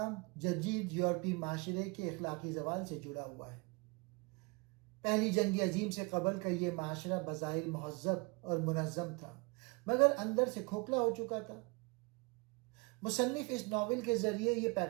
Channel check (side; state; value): left; quieter; 28.5 dB